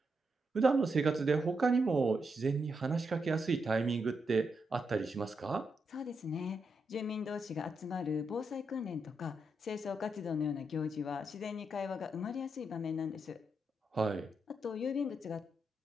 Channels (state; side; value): normal; both; correlation 0.83